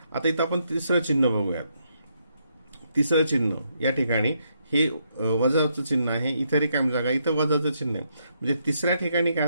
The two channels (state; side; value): inverted; both; correlation -0.77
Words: आता इथं आपण तिसरं चिन्ह बघूयात। तिसरं चिन्ह या ठिकाणी हे वजाचं चिन्ह आहे, इथं रिकामी जागा, इथं वजाचं चिन्ह आहे, म्हणजे तिसऱ्या ठिकाणी काय